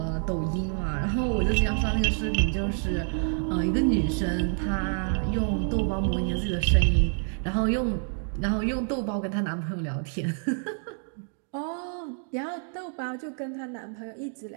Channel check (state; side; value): silent; left; 59 dB below the other